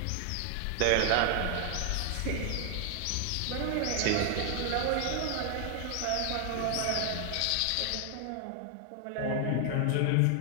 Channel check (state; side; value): different; both; correlation 0.00